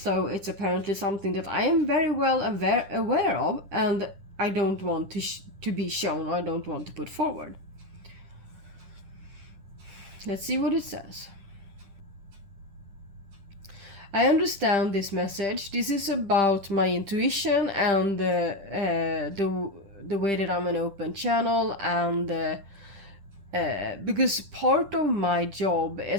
it's apparently something that I am very well aware of, and I don't want to be shown, or I don't want to put forward. Let's see what it says. I understand this message. This is about my intuition and the way that I'm an open channel, and because part of my job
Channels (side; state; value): left; late; 10 ms